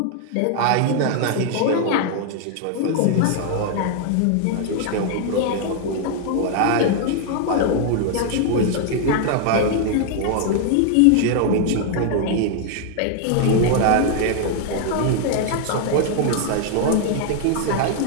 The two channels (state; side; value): different; both; correlation 0.00